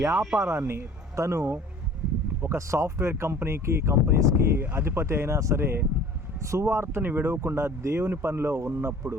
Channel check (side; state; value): both; normal; correlation 0.47